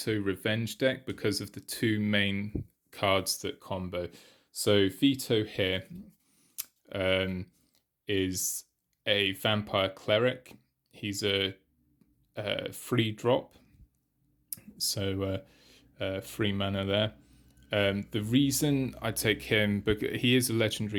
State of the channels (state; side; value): identical; both; correlation 1.00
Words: Revenge deck because of the two main cards that combo. So Vito here is a vampire cleric. He's a free drop, so free mana there. The reason I take him, because he is a